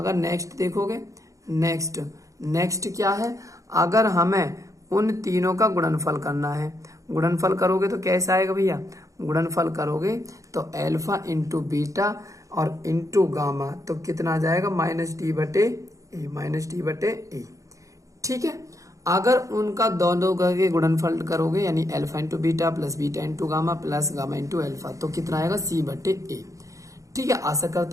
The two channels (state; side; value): late; left; 0.16 ms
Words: नेक्स्ट देखोगे, नेक्स्ट क्या है? अगर हमें उन तीनों का गुणनफल करना है, गुणनफल करोगे तो कैसा आएगा भैया? गुणनफल करोगे तो एल्फा इंटू बीटा और इंटू गामा, तो कितना आ जाएगा? माइनस डी बटे ए। ठीक है, अगर उनका दोनों का गुणनफल करोगे, यानी alpha into beta plus beta into gamma plus gamma into alpha, तो कितना आएगा? सी बटे ए। ठीक है, आशा